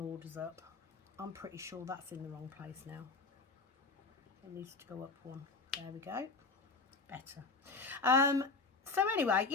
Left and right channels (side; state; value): right; quieter; 4.0 dB